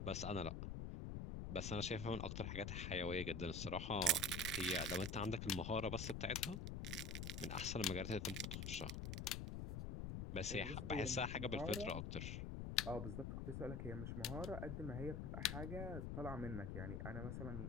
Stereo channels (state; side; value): noise; left; rumble, 3 dB below the sound